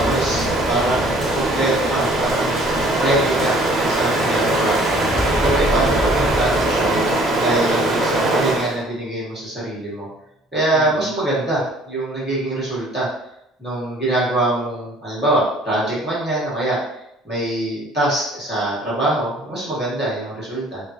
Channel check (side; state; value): both; normal; correlation 0.54